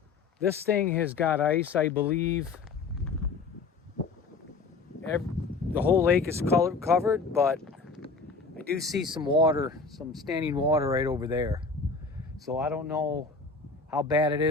thing has got ice, I believe. The whole lake is covered, but I do see some water, some standing water right over there. So I don't know how bad it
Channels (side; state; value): right; quieter; 4.3 dB